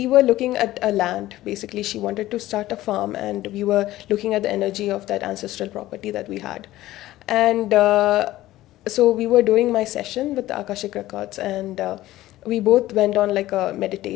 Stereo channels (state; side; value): quieter; right; 15.7 dB